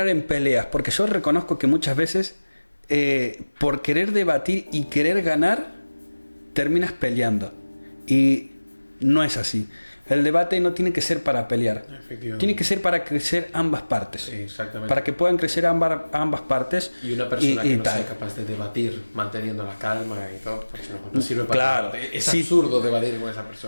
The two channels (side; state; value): both; inverted; correlation -1.00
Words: en peleas, porque yo reconozco que muchas veces por querer debatir y querer ganar terminas peleando, y no es así. El debate no tiene que ser para pelear, tiene que ser para crecer ambas partes. Sí, exactamente. Para que puedan crecer ambas partes. Y una persona que no sea capaz de debatir manteniendo la calma y todo, pues no sirve para nada. Es absurdo debatir con esa